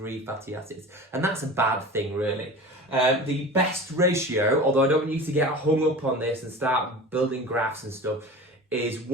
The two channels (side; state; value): both; normal; correlation 0.35